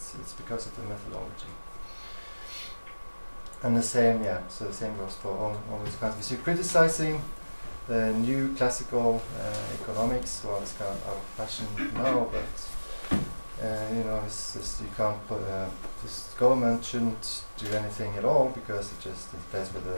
it's because of the methodology. And the same, so the same goes for all these kinds. So you're criticizing the new classical economics. Well, it's kind of out of fashion now, but it's just you can't put this government shouldn't do anything at all because it just interferes with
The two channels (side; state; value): both; inverted; correlation -1.00